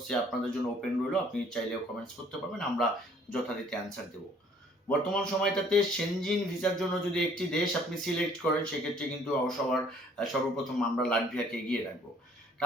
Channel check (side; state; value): both; normal; correlation 0.58